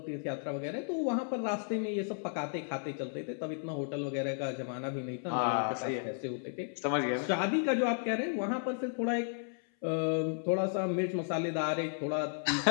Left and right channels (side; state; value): right; silent; 55 dB below the other